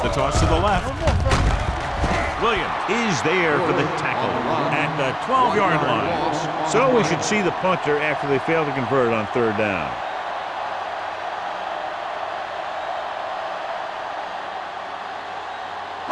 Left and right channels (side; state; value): both; identical; correlation 1.00